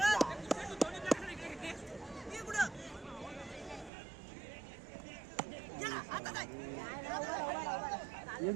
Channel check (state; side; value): drops out; left; at 3.9 s